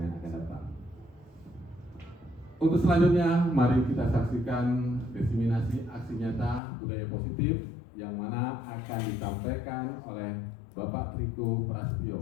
akan datang. Untuk selanjutnya, mari kita saksikan diseminasi aksi nyata budaya positif yang mana akan disampaikan oleh Bapak Triko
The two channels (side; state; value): right; drops out; at 6.6 s